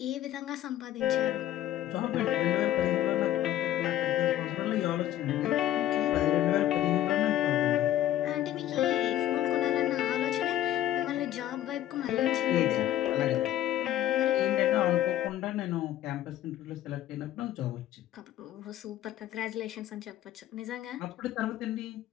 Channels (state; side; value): quieter; right; 12.9 dB